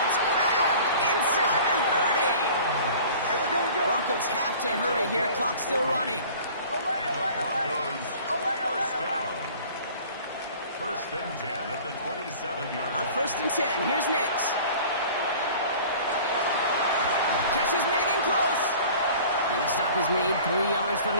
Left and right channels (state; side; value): inverted; both; correlation -0.45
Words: grabbed inside the 30. Broncos have to hurry here. Clock's still running. And the Broncos, 1st down. 1st and 10 at the 27-yard On line. 1st and 10, here's Nix. Catch is made in close. And the stop is made 3 yards from